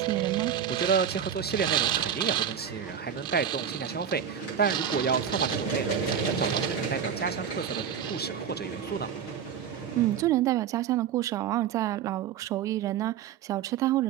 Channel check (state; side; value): quieter; left; 8.3 dB